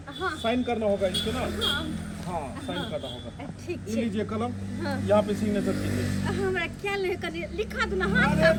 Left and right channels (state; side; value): identical; both; correlation 1.00